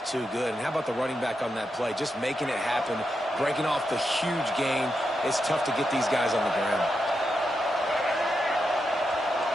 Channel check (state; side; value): normal; both; correlation 0.86